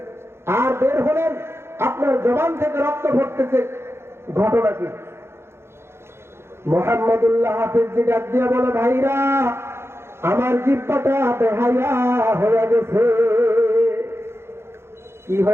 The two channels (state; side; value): late; left; 0.12 ms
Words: আর বের হলেন, আপনার জবান থেকে রক্ত পড়তেছে, ঘটনা কি? মুহাম্মদুল্লাহ হাফিজ ডাক দিয়ে বলে, ভাইরা, আমার জিহ্বাটা বেহায়া হয়ে গেছে। কি